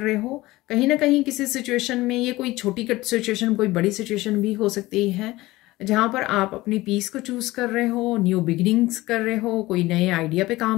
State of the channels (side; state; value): right; quieter; 18.8 dB